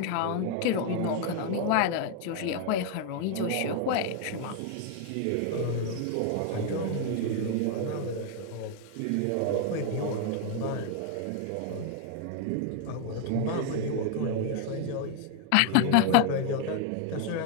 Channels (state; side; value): different; both; correlation 0.00